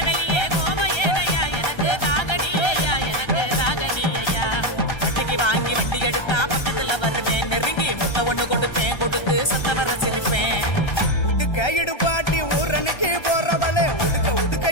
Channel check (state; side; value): late; right; 1.3 ms